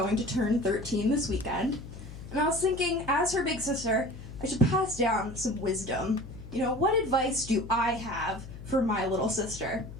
to turn 13 this weekend. And I was thinking, as her big sister, I should pass down some wisdom. You know, what advice do I have for my little sister?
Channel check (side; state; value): left; noise; hum, 13 dB below the sound